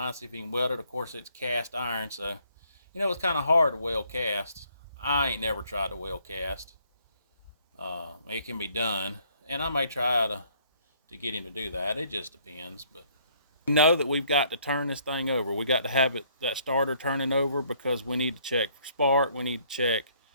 see if he can weld it. Of course it's cast iron, so you know it's kind of hard to weld cast. I ain't never tried to weld cast. It can be done, and I may try to get him to do that. It just depends. But we know that we've got to turn this thing over. We got to have that starter turning over because we need to check for spark. We need to check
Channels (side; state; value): both; inverted; correlation -0.64